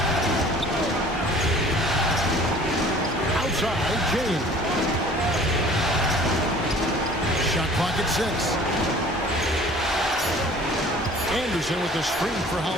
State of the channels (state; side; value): normal; both; correlation 0.49